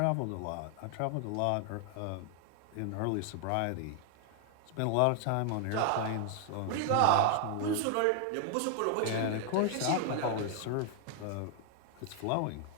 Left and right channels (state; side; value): different; both; correlation 0.00